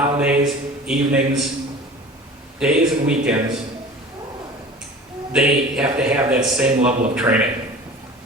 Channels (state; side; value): normal; both; correlation 0.40